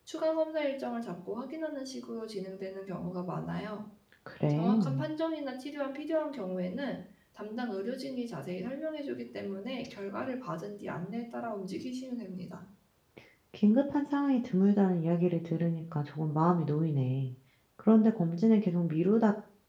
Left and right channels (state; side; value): identical; both; correlation 1.00